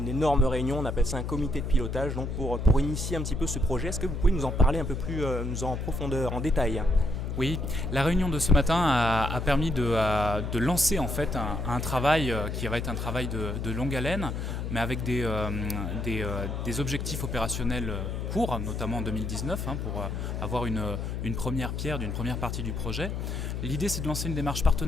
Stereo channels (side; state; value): left; noise; hum, 3 dB below the sound